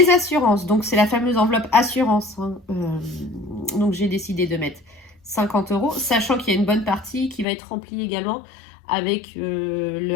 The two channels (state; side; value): drops out; right; at 7.5 s